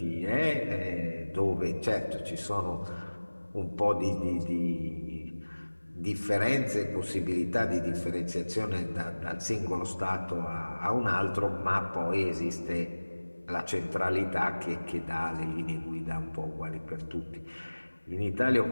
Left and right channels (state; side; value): inverted; both; correlation -1.00